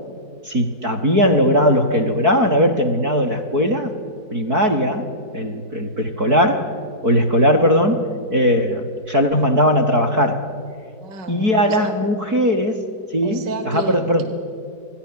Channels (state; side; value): late; left; 4.6 ms